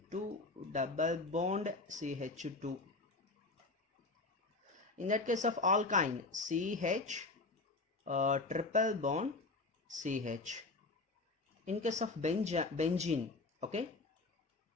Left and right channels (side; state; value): right; quieter; 3.4 dB